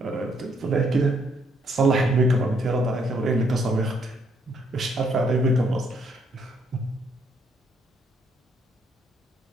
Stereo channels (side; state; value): both; normal; correlation 0.70